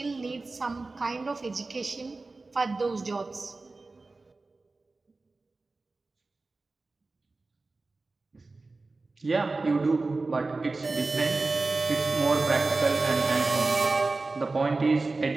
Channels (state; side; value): quieter; left; 3.5 dB